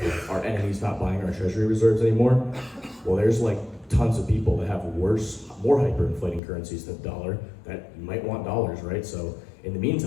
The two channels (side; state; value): right; drops out; at 6.4 s